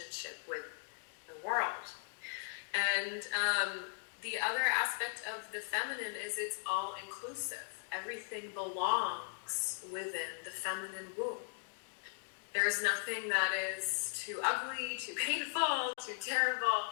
with the world. And the other aspect of the feminine is it's all inclusive. Everything belongs within the feminine womb. There's nothing that is too ugly, too painful, too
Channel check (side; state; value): right; silent; digital silence